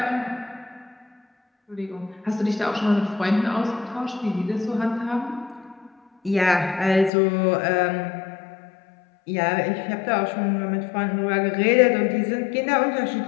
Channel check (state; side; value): drops out; right; at 7.1 s